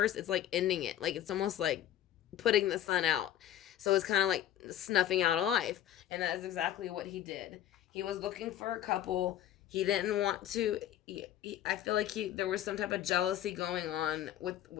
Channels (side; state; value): right; quieter; 11.8 dB